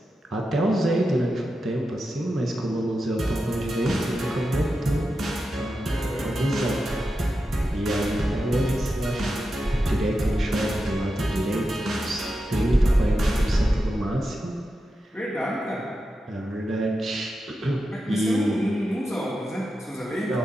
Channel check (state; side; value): normal; both; correlation 0.90